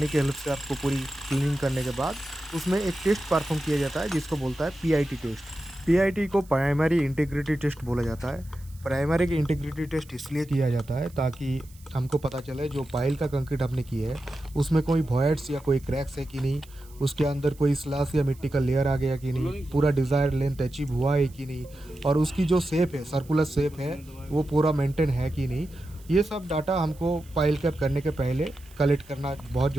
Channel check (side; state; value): right; noise; hiss, 25 dB below the sound